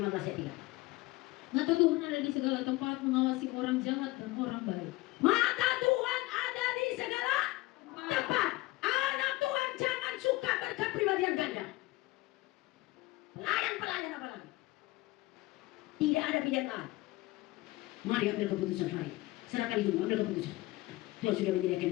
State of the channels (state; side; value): quieter; right; 19.9 dB